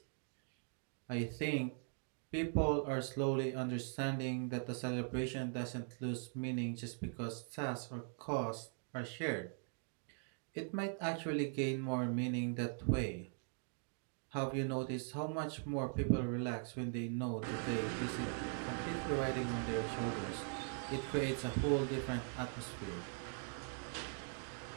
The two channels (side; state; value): left; silent; 50 dB below the other